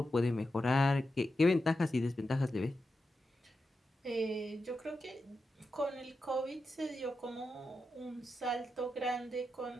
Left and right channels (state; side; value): normal; both; correlation 0.89